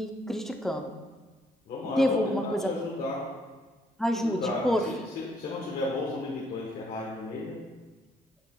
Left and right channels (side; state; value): both; normal; correlation 0.69